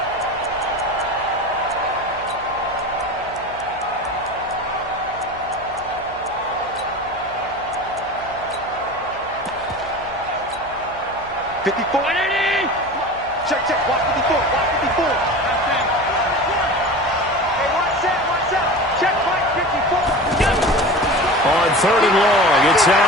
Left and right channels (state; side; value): noise; right; hum, 19 dB below the sound